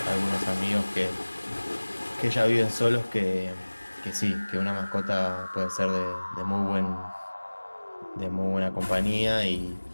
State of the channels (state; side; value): inverted; both; correlation -1.00